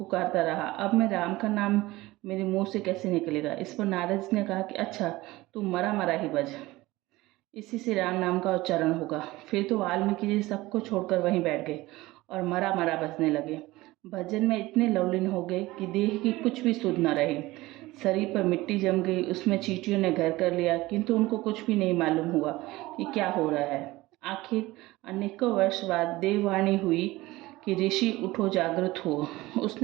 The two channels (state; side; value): quieter; left; 19.2 dB